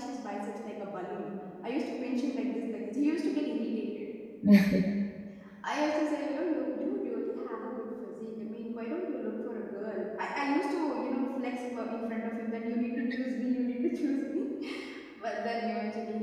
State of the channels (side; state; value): both; identical; correlation 1.00